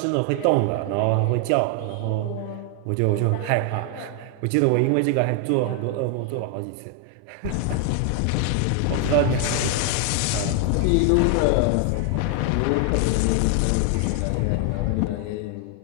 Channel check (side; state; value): both; different; correlation 0.00